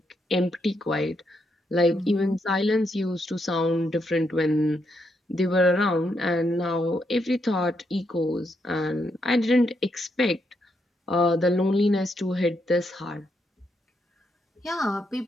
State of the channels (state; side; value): normal; both; correlation 0.79